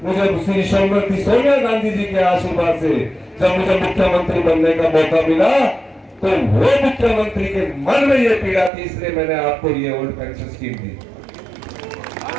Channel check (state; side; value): drops out; left; at 8.7 s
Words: मुझे श्री श्रीमती सोनिया गांधी जी के आशीर्वाद से जब मुझे मुख्यमंत्री बनने का मौका मिला, तो वो मुख्यमंत्री के मन में ये पीड़ा थी, इसलिए मैंने आपको ये ओल्ड पेंशन स्कीम दी।